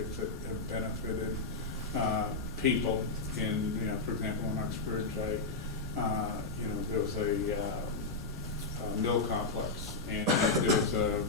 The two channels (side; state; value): right; quieter; 3.7 dB